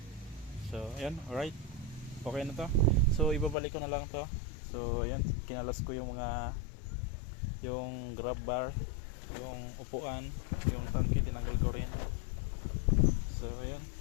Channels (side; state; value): right; drops out; at 3.6 s